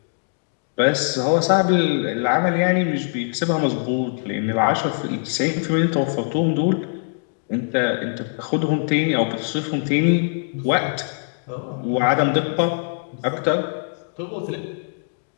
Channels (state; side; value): silent; right; digital silence